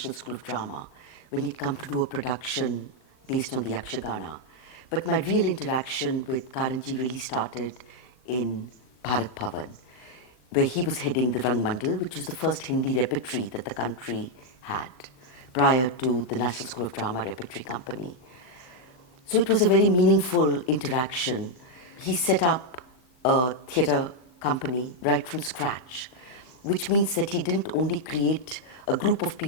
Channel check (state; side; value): late; right; 39 ms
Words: School of Drama, when he'd come to do a production based on the Yakshagana. But my real interaction with Karanji really started in Bharat Bhavan, where he was heading the Rangmandal, which was the first Hindi repertory that the country had prior to the National School of Drama Repertory Company. So it was a very meaningful interaction. He set up a theatre company right from scratch, which means that he didn't only create a group of